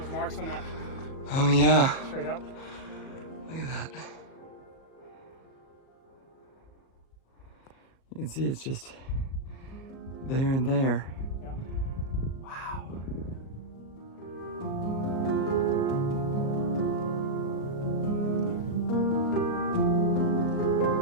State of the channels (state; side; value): late; right; 37 ms